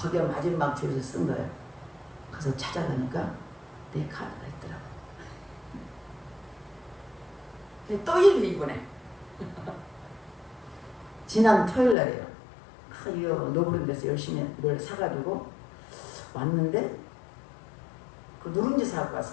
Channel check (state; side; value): drops out; right; at 12.0 s